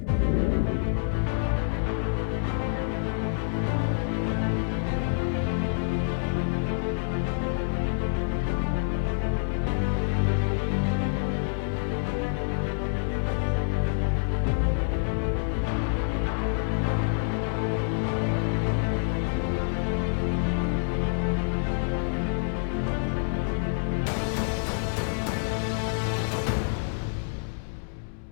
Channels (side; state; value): right; silent; digital silence